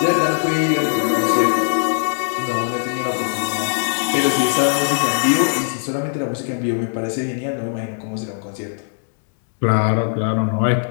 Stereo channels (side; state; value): right; silent; 66 dB below the other